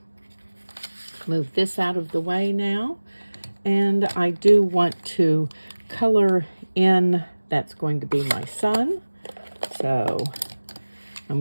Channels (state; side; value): inverted; both; correlation -1.00